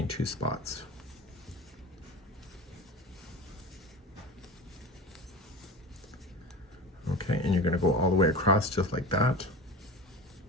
2 spots. Okay, and you're going to go all the way across just like that.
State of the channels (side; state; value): both; normal; correlation 0.32